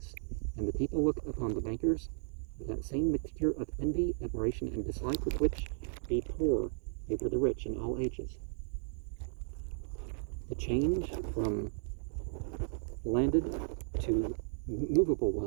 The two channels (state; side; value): silent; left; digital silence